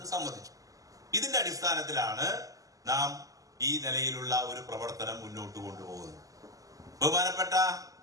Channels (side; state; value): left; late; 0.17 ms